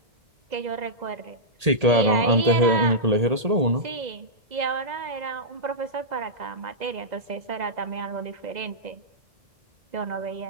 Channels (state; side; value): late; left; 1.8 ms